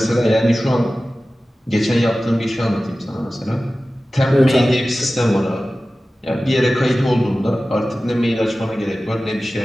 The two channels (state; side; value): normal; both; correlation 0.96